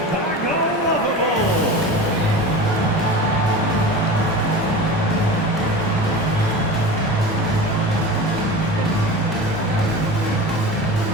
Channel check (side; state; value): both; normal; correlation 0.32